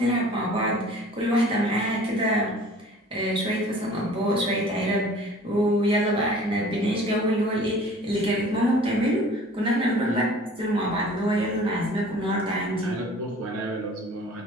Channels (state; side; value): normal; both; correlation 0.47